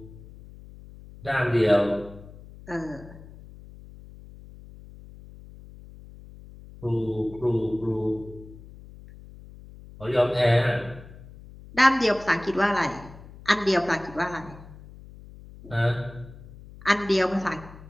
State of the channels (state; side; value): noise; left; hum, 18 dB below the sound